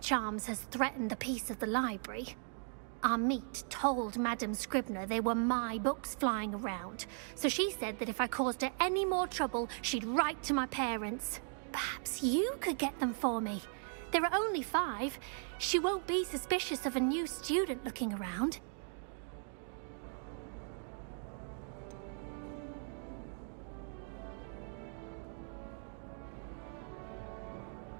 has threatened the peace of the library. Our meet told Madame Scribner they were my books flying around, so she said that if I caused her any more trouble, she'd write to my parents. Perhaps you could get them for me. There are only 5. She won't be suspicious of a new student looking around.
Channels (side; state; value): left; silent; 52 dB below the other